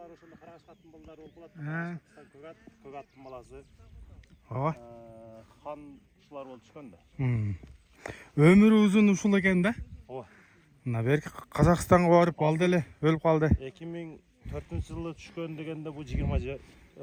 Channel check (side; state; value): both; identical; correlation 1.00